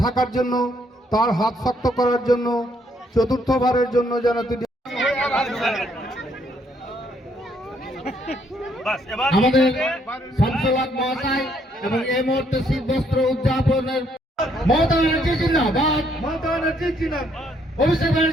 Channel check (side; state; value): both; normal; correlation 0.69